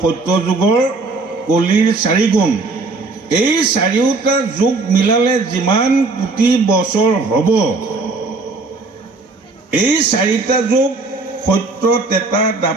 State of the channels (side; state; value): left; quieter; 3.7 dB